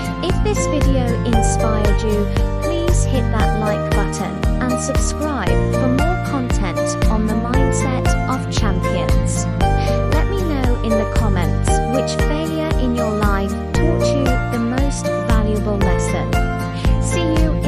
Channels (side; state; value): both; identical; correlation 1.00